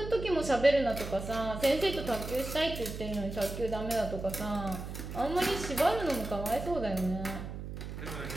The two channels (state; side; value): noise; right; hum, 8 dB below the sound